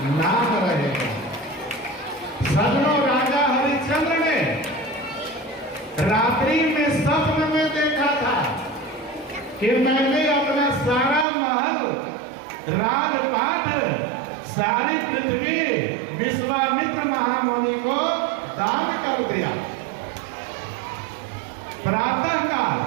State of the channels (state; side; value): drops out; left; at 11.2 s